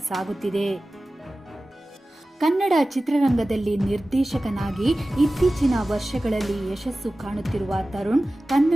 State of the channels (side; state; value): both; normal; correlation 0.96